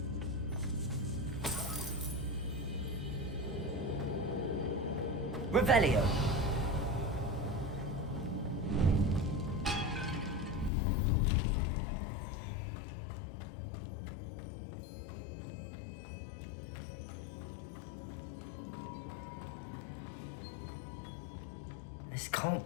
Revelio. This can't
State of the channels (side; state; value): right; drops out; at 10.7 s